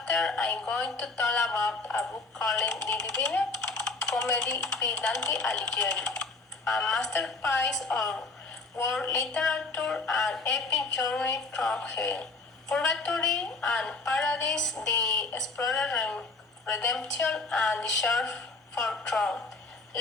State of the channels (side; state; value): right; quieter; 3.7 dB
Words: After, I'm going to talk about a book called The Divine Comedy by Dante Aligheri, a masterpiece of world literature and epic journey through hell, purgatory, and paradise, the explorer redemption, and the search for throne.